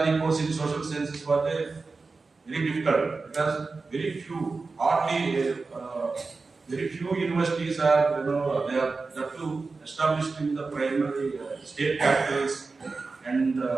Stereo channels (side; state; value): left; quieter; 4.1 dB